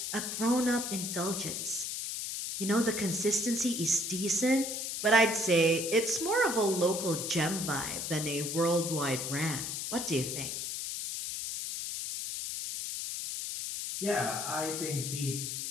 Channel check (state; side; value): noise; left; hiss, 4 dB below the sound